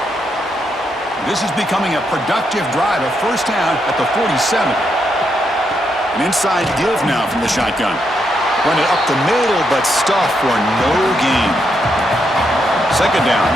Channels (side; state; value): both; normal; correlation 0.80